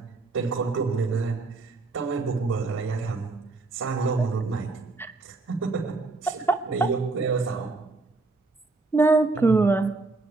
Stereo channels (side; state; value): left; quieter; 3.6 dB